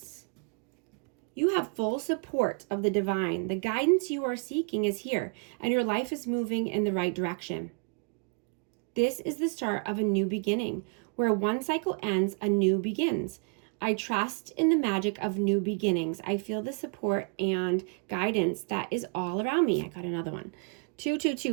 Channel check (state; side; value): quieter; left; 38.2 dB